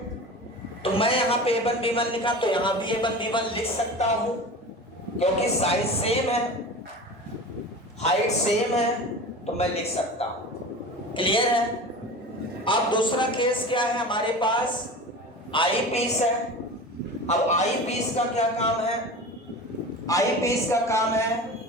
तो मैं यहां पे A1 B1 लिखा तो यहां भी A1 B1 लिख सकता हूं, क्योंकि साइज सेम है, हाइट सेम है, तो मैं लिख सकता हूं। क्लियर है? अब दूसरा केस क्या है हमारे पास? आई पीस है। अब आई पीस का क्या काम है? आई पीस का काम है,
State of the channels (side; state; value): both; normal; correlation 0.33